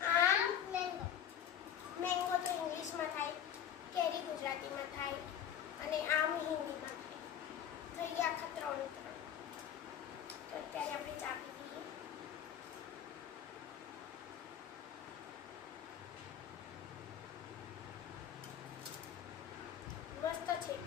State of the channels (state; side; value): quieter; right; 9.6 dB